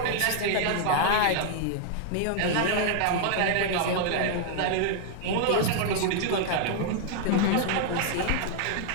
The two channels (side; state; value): both; different; correlation 0.00